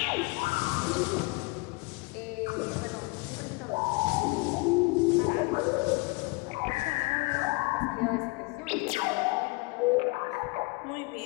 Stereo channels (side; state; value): right; quieter; 26.7 dB